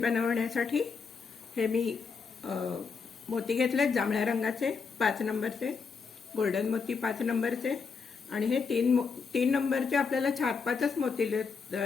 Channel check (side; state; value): right; quieter; 5.3 dB